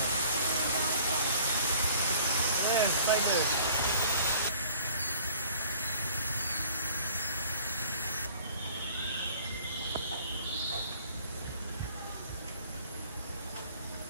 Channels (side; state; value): both; inverted; correlation -0.53